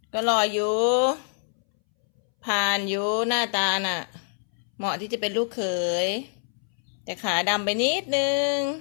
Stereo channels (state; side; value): silent; right; 61 dB below the other